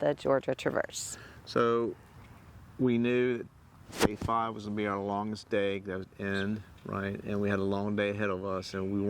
Georgia Traverse. So we knew that day 5 was gonna be our longest day. That was end, right? And we had a long day ahead of us,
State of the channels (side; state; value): both; identical; correlation 1.00